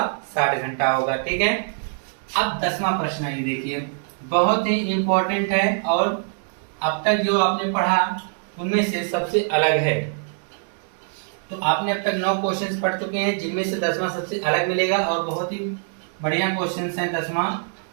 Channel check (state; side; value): silent; left; 63 dB below the other